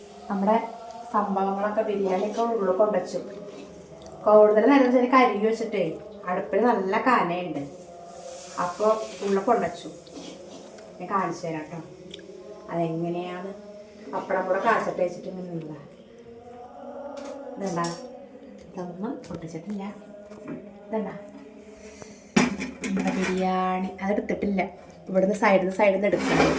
നമ്മുടെ സംഭവങ്ങളൊക്കെ ബിരിയാണിയൊക്കെ ഉള്ളിൽ കൊണ്ടുവച്ചു. കൂടുതൽ നേരം വെച്ചാൽ കരികി വെച്ചിട്ടേ അടുപ്പിൽ നല്ല കനയുണ്ട്. അപ്പോൾ ഉള്ളിൽ കൊണ്ടുവച്ചു. ഞാൻ കാണിച്ചു തരാം കേട്ടോ അതെങ്ങനെയാണ്. പപ്പടം കൂടെ കാച്ചിട്ട് വെച്ചിട്ട് ഇങ്ങനെ നിന്നാ ഇതെന്താ, ഇതൊന്നും പൊട്ടിച്ചിട്ടില്ല. ഇതെന്താ നമ്മുടെ ബിരിയാണി. അതെടുത്തിട്ടില്ല, ഇവിടുന്ന് സൈഡിൽ നിന്ന് എടുക്കണം.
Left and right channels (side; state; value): both; identical; correlation 1.00